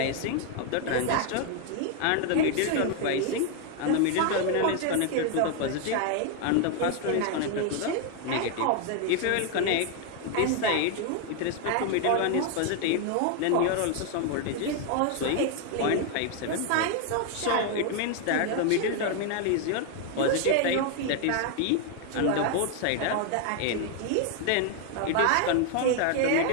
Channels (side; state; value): both; different; correlation 0.01